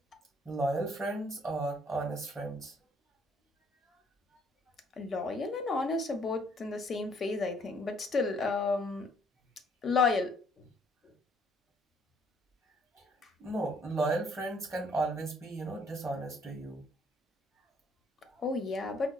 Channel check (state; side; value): normal; both; correlation 0.64